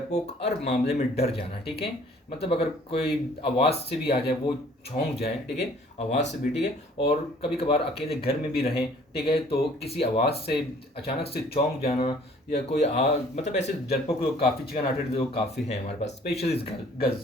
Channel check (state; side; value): normal; both; correlation 0.55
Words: हर मामले में डर जाना, ठीक है. मतलब अगर कोई आवाज़ से भी आ जाए वो छौंक जाए, ठीक है, आवाज़ से भी, ठीक है. और कभी कभार अकेले घर में भी रहें, ठीक है, तो किसी आवाज़ से अचानक से चौंक जाना, या कोई मतलब ऐसे डरपोक लोग काफ़ी, चिकन हार्टेड लोग काफ़ी हैं हमारे पास, specially